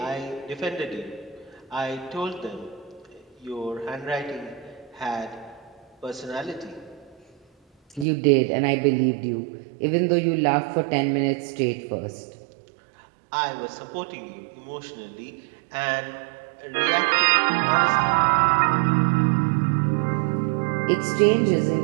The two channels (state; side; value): drops out; left; at 8.1 s